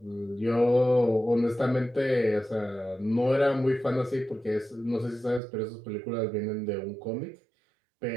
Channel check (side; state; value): left; drops out; at 5.4 s